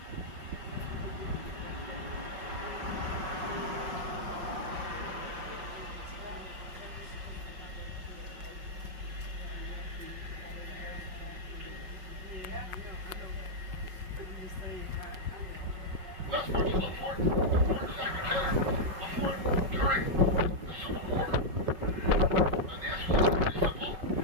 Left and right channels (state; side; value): late; left; 5.4 ms